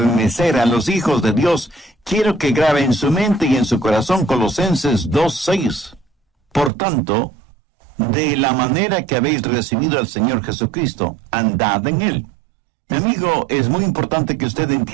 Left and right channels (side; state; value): left; drops out; at 6.7 s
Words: a los hijos de Dios, quiero que grabe en su mente y en su corazón Colosenses 2:6. Por tanto, de la manera que habéis recibido al Señor Jesucristo, andad en Él. Mi amigo, es muy importante que usted